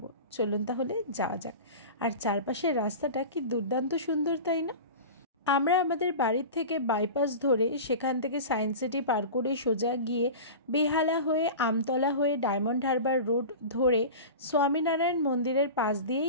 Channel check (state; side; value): inverted; both; correlation -0.31